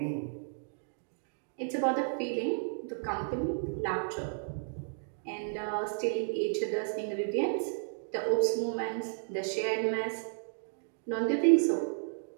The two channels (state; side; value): silent; left; digital silence